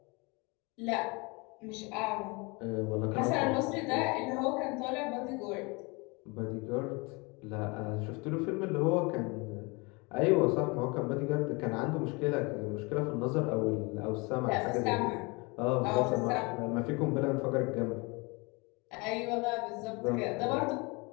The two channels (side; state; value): right; quieter; 28.1 dB